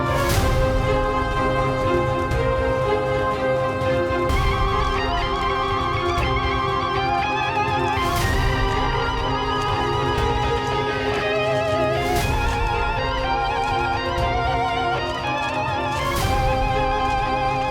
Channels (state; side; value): identical; both; correlation 1.00